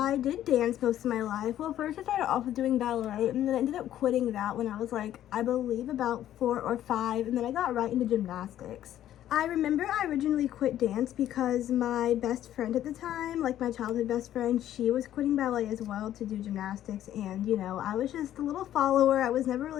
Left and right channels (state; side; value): quieter; right; 12.0 dB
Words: did dance most of my life. Well, first I started off with doing ballet, and then I ended up quitting that when I was like, I believe about 4 or 5, and then I got right into gymnastics. I remember I originally quit dance because my best friend at the time, like my childhood best friend, she was quitting ballet as well to do gymnastics, and you know, I was just a little follower. I was never